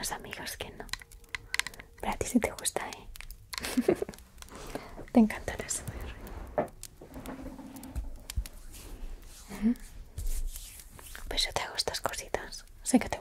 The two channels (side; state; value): both; identical; correlation 1.00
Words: amigas que no. Pero a ti sí te gusta, ¿eh? Te encanta el ASMR. Pues yo te hago estas cositas. Sé que te